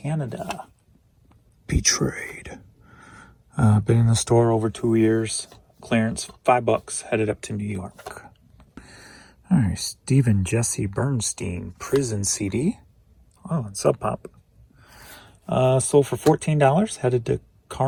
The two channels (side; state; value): both; identical; correlation 1.00